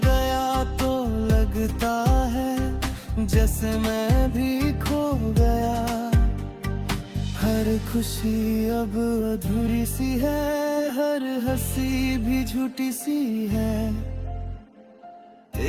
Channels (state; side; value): identical; both; correlation 1.00